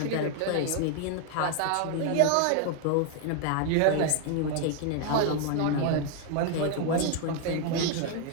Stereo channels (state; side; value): different; both; correlation 0.01